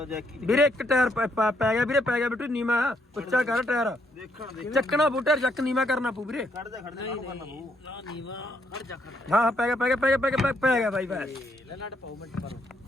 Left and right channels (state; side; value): normal; both; correlation 0.73